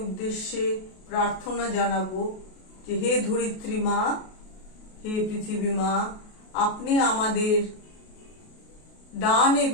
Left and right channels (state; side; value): late; right; 33 ms